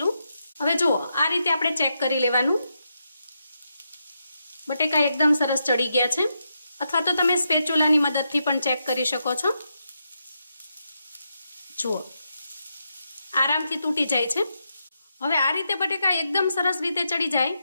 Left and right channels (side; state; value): both; inverted; correlation -0.83